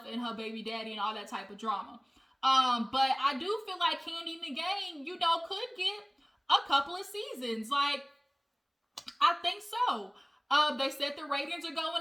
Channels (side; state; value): both; identical; correlation 1.00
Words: and her baby daddy and all that type of drama. But I do feel like Kandi and the Gang, could get a couple of seasons. Like, I think so. They said the ratings are